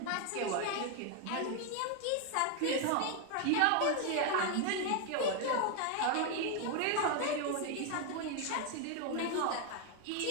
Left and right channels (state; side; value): different; both; correlation 0.01